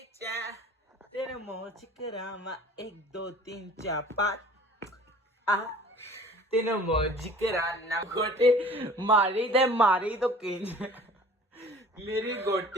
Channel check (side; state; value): both; normal; correlation 0.47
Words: तेरे मुंह च करामा 1 2 3 4 5 आ तेरे मुंह च कराना गोटी मारी तो किंज मेरी